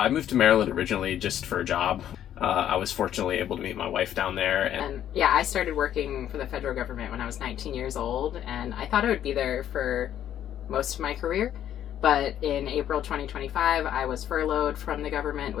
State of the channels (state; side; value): quieter; right; 10.8 dB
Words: moved to Maryland originally just for a job. I was fortunately able to meet my wife down there. And yeah, I started working for the federal government when I was 19 years old, and I thought I would be there for most of my career. But in April 2025, I was furloughed from the government